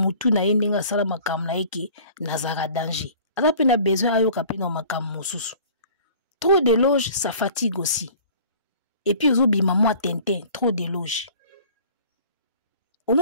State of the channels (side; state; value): both; inverted; correlation -0.48